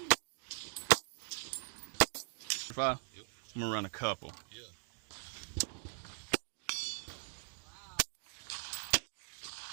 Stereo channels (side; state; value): left; silent; digital silence